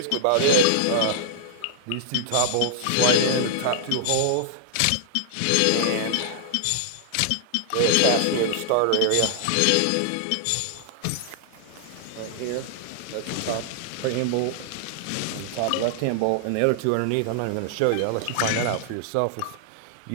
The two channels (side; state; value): both; different; correlation -0.01